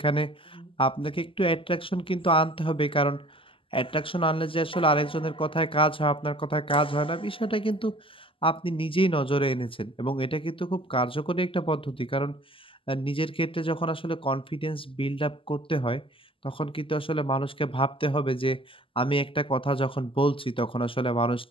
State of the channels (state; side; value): late; right; 0.25 ms